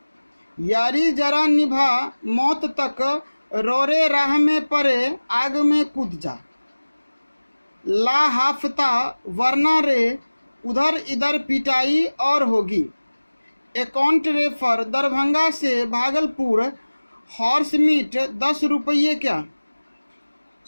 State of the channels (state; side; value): inverted; both; correlation -1.00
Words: यारी जरा निभा मौत तक, रोरे राह में पड़े आग में कूद जा। ला हाफता वरना रे उधर इधर पिटाई और होगी। अकाउंट रेफर दरभंगा से भागलपुर, हॉर्स मीट 10 रुपये क्या।